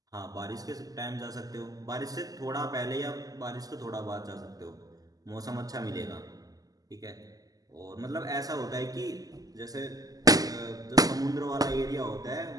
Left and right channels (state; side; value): late; left; 0.17 ms